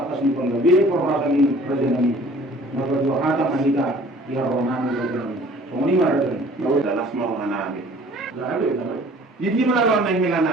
di penggabi perasaan ini raja nabi. Maka dua kata kita ya rohani rohani. Semua ini mana tu? Lalu dalam semua rohani. Lalu. Jadi mana orang yang hilang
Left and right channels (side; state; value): both; normal; correlation 0.51